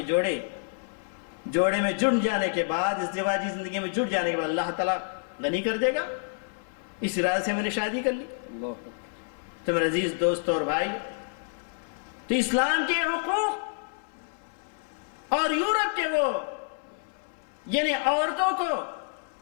جوڑے میں جڑ جانے کے بعد، ازدواجی زندگی میں جڑ جانے کے بعد اللہ تعالیٰ غنی کر دے گا، اس ارادے سے میں نے شادی کر لی۔ تو میرے عزیز دوست اور بھائی، تو اسلام کے حقوق اور یورپ کے وہ یعنی عورتوں کو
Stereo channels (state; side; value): silent; right; 59 dB below the other